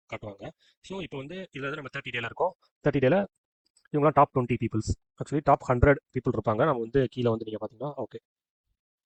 காட்டுவாங்க. ஸோ இப்போ வந்து இதில் வந்து நம்ம 30 டேல இருக்கோம். 30 டேல இவங்களாம் top 20 peoples, actually top 100 people இருப்பாங்க. நம்ம வந்து கீழே வந்து நீங்கள் பார்த்தீங்கன்னா ஓகே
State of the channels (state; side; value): identical; both; correlation 1.00